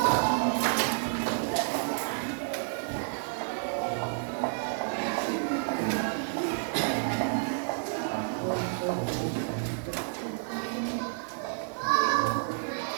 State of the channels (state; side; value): silent; left; digital silence